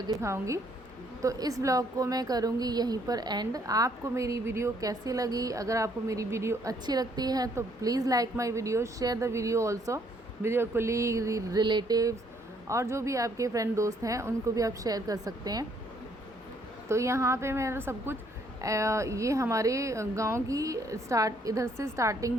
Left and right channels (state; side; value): normal; both; correlation 0.67